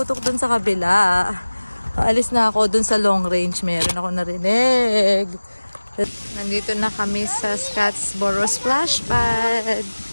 dun sa kabila. Paalis na ako dun sa long range. Meron ako narinig. Nandito na kami sa Scottsboro Splash Pad.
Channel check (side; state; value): both; inverted; correlation -1.00